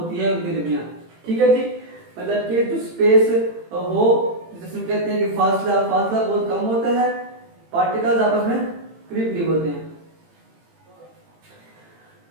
है उनके दरमियान। ठीक है जी, मतलब कि जो स्पेस हो, जिसमें कहते हैं कि फासला बहुत कम होता है, पार्टिकल्स आपस में करीब करीब होते हैं।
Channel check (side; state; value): left; late; 18 ms